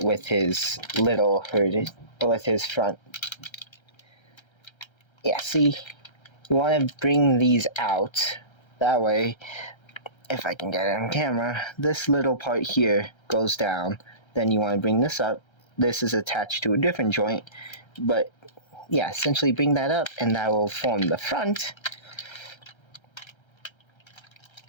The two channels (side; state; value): right; late; 1.3 ms